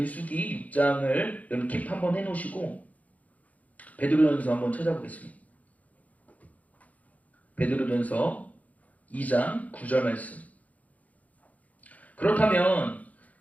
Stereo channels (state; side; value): late; right; 0.072 ms